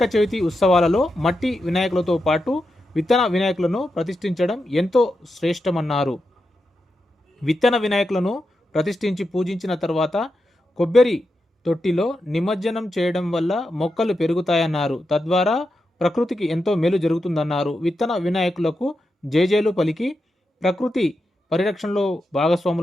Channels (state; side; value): normal; both; correlation 0.88